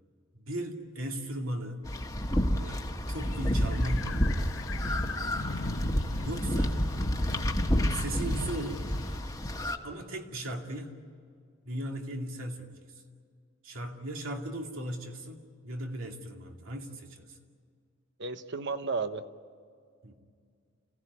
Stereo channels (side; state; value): both; normal; correlation 0.75